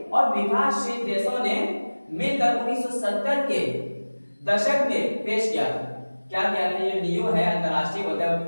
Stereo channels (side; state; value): both; inverted; correlation -1.00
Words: और विकासशील देशों ने मिलकर 1970 के दशक में पेश किया था। क्या किया था, ये नियो है अंतरराष्ट्रीय